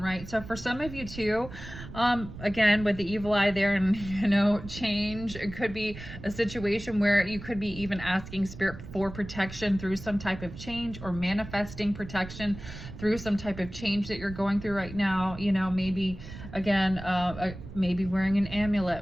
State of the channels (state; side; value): noise; right; rumble, 13 dB below the sound